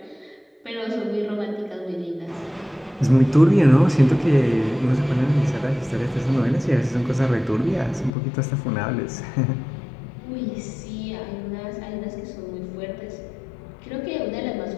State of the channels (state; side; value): drops out; right; at 8.1 s